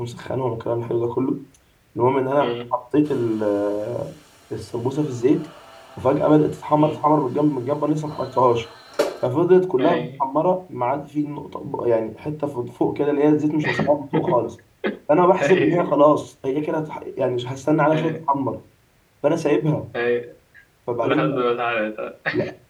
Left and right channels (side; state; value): both; identical; correlation 1.00